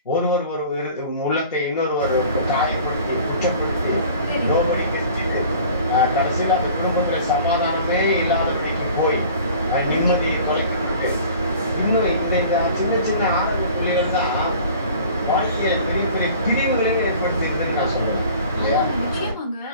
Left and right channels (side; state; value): both; inverted; correlation -0.46